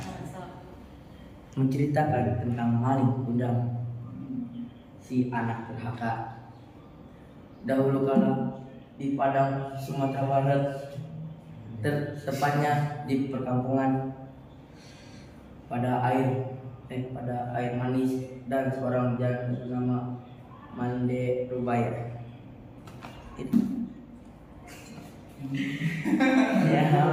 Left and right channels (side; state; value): both; identical; correlation 1.00